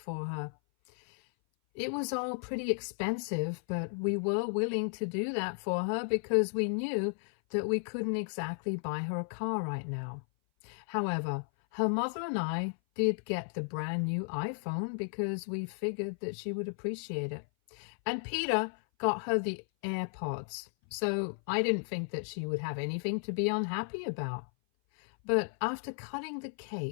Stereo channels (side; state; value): right; silent; 55 dB below the other